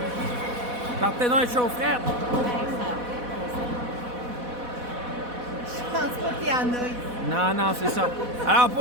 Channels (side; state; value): left; late; 4.1 ms